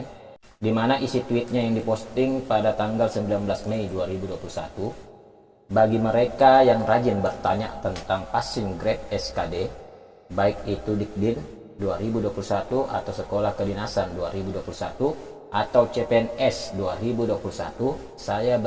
di mana isi tweetnya yang diposting pada tanggal 19 Mei 2021. Bagi mereka yang rajin bertanya tentang passing grade SKD, baik itu Dikdin 2021 atau Sekolah Kedinasan 2021 atau CPNS 2021, saya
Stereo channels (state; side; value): identical; both; correlation 1.00